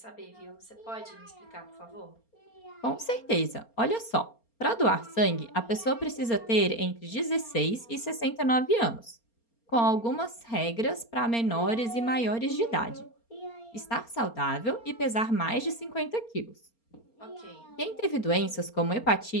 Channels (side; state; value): right; late; 4.3 ms